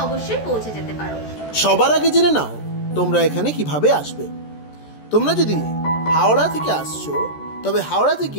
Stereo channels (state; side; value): late; right; 14 ms